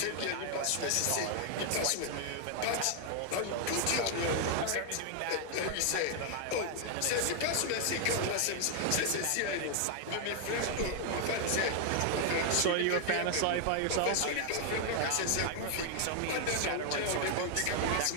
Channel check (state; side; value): different; both; correlation 0.00